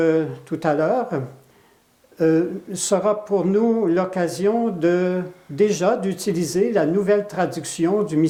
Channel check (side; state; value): both; identical; correlation 1.00